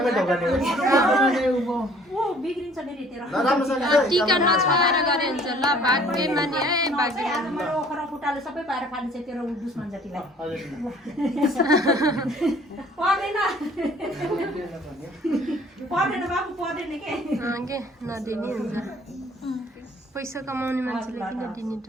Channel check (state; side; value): normal; both; correlation 0.55